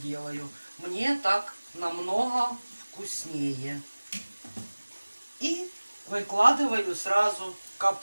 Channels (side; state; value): both; inverted; correlation -1.00